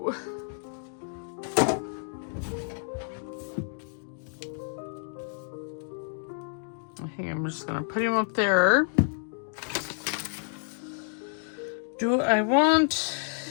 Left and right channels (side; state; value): right; silent; digital silence